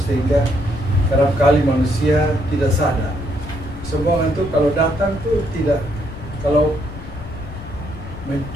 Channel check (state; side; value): noise; left; rumble, 13 dB below the sound